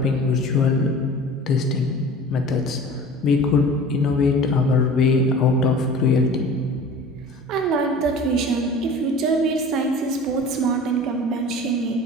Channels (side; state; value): both; normal; correlation 0.41